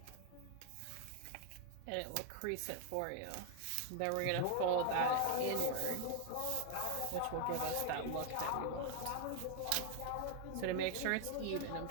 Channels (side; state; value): both; different; correlation 0.00